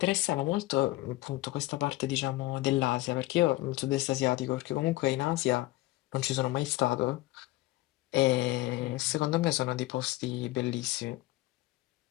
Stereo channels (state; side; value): quieter; right; 18.6 dB